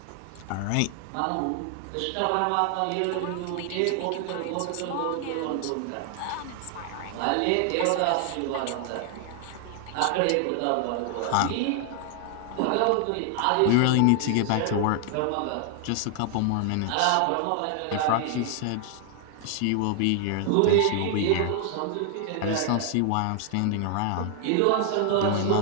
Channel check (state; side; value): different; both; correlation 0.00